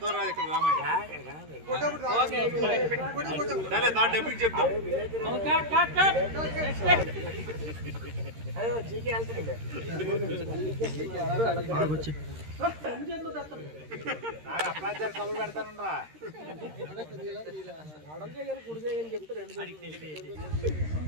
రాదు ఇక్కడ రామయ్య డబ్బింగ్ చెప్తాం. కబురు పెడతానురా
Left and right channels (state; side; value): late; left; 13 ms